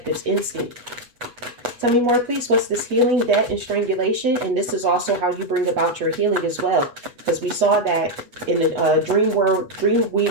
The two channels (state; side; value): late; left; 8.2 ms